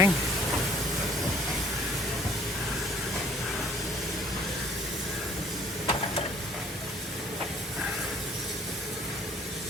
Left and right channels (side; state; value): both; normal; correlation 0.57